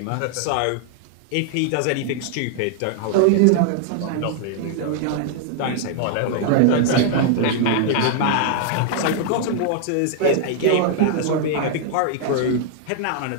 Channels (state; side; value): different; both; correlation -0.01